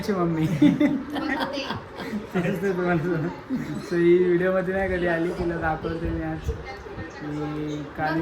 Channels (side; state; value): both; identical; correlation 1.00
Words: मम्मी तुम्हाला सो ही व्हिडिओमध्ये नाही कधी आली तिला दाखवते मी आज मी